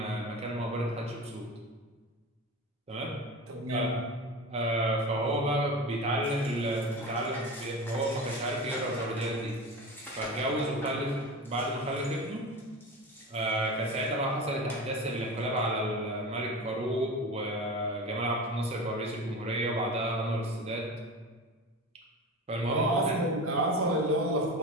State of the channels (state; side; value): normal; both; correlation 0.29